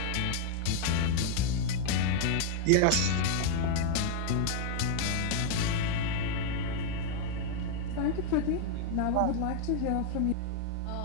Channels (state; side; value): different; both; correlation 0.00